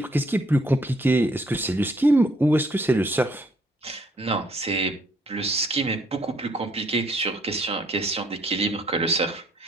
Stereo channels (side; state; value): both; normal; correlation 0.66